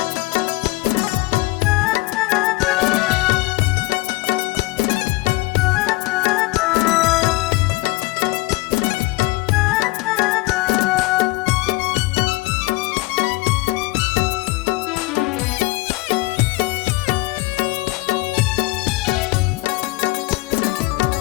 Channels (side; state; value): right; quieter; 21.6 dB